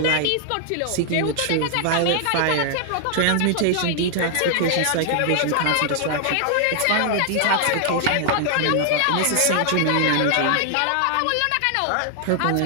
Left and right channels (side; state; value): both; different; correlation 0.00